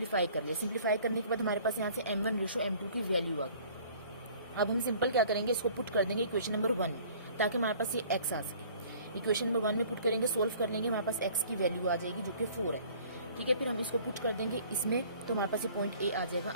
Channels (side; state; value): both; inverted; correlation -0.52